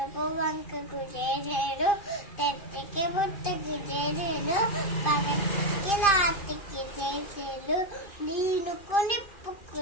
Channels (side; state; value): right; late; 2.5 ms